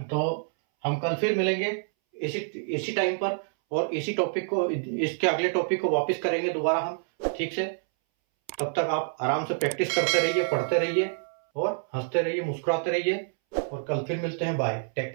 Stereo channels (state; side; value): silent; left; 60 dB below the other